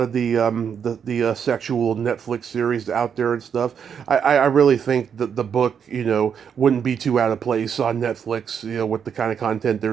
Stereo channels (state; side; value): quieter; left; 7.5 dB